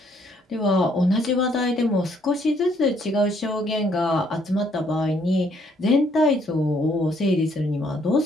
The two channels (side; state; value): both; normal; correlation 0.67